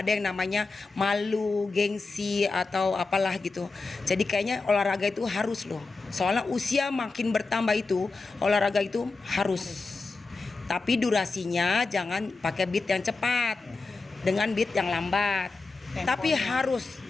ada yang namanya malu, gengsi atau apalah gitu. Jadi kayaknya olahraga itu harus loh. Soalnya usia makin bertambah itu olahraga itu harus. Tapi durasinya jangan pakai beat yang cepat, dengan beat yang lambat. Tapi harus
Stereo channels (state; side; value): quieter; right; 3.8 dB